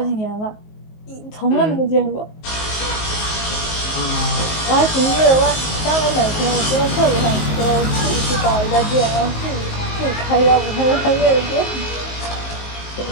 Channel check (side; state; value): right; late; 19 ms